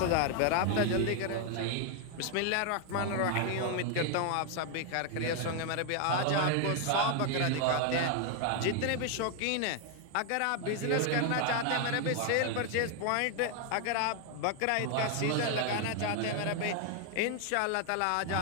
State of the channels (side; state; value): both; different; correlation 0.00